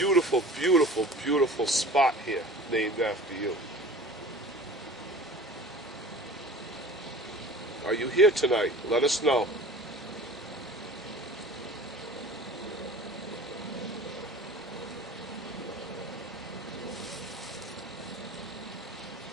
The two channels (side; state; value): both; normal; correlation 0.41